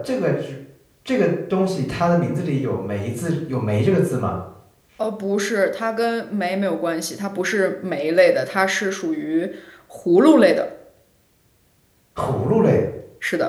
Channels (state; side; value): identical; both; correlation 1.00